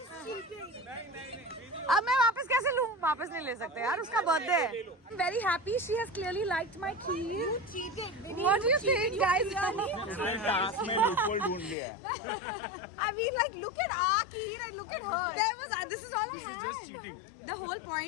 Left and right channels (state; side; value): drops out; right; at 11.8 s